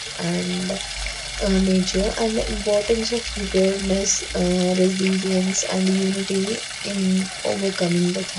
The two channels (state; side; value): identical; both; correlation 1.00